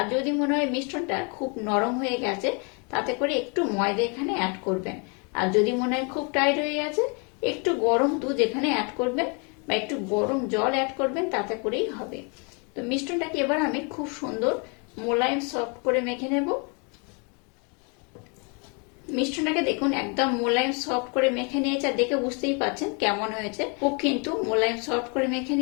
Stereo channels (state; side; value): quieter; right; 34.5 dB